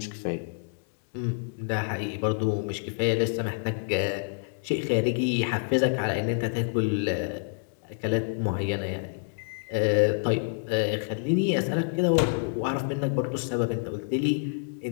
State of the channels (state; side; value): silent; right; digital silence